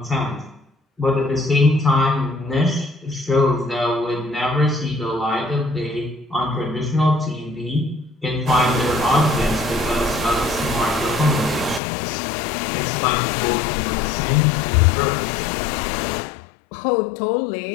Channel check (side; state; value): right; drops out; at 11.8 s